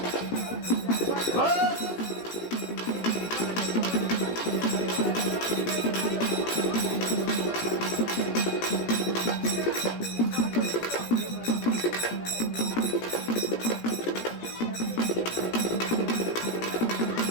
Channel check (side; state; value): right; late; 17 ms